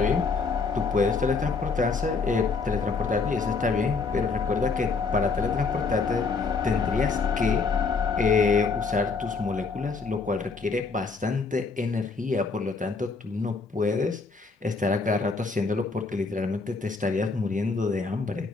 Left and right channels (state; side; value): quieter; right; 4.4 dB